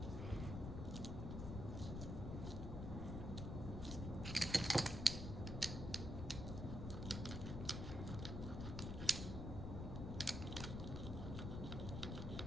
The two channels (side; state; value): left; noise; rumble, 3 dB below the sound